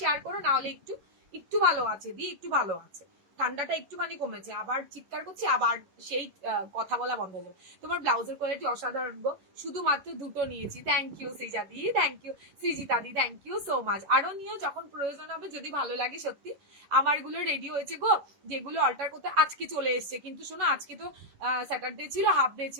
করো, না হলে একটু একটু ভালো আছে দি, একটু ভালো আছে। ঠান্ডাটা একটুখানি কমেছে, আবার চিৎকার করছি, আবার সেই কথা বলা বন্ধ হয়ে যাবে। তোমার ব্লাউজের কোয়ালিটি অসাধারণ গো, শুধুমাত্র দুটো নিয়েছি। থ্যাংক ইউ সৃজা দি, থ্যাংক ইউ সৃজিতা দি, থ্যাংক ইউ সো মাচ। আরো নিও যখন প্রয়োজন হবে, যদি ভালো লাগে। সত্যি আমার গুলো রেডি হয়েছে গো, যেগুলো অল্টার করতে আজকে চলে এসছে, কিন্তু শোনো আজকে তো স্যাটারডে ছিল, হাফ ডে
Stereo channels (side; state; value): left; late; 11 ms